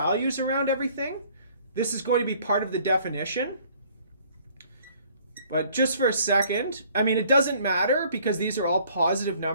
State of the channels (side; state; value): both; inverted; correlation -0.58